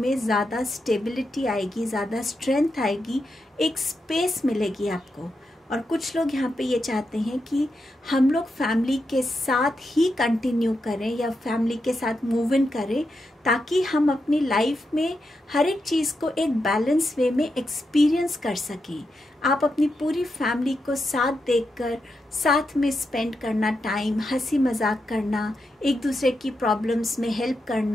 ज़्यादा स्टेबिलिटी आएगी, ज़्यादा स्ट्रेंथ आएगी, एक स्पेस मिलेगी आपको। और कुछ लोग यहाँ पे ये चाहते हैं कि हम लोग फैमिली के साथ ही कंटिन्यू करें या फैमिली के साथ मूव इन करें, ताकि हम अपनी लाइफ में हर एक चीज़ को एक बैलेंस वे में एक्सपीरियंस कर सकें। आप अपनी पूरी फैमिली को साथ देखकर साथ में स्पेंड करना, टाइम हंसी मजाक करना, एक दूसरे की प्रॉब्लम्स में हेल्प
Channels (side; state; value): both; normal; correlation 0.86